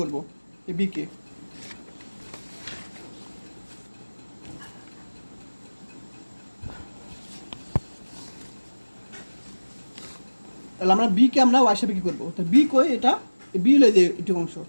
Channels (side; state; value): both; inverted; correlation -1.00